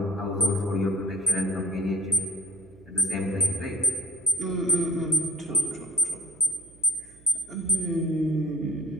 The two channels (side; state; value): right; noise; hum, 25 dB below the sound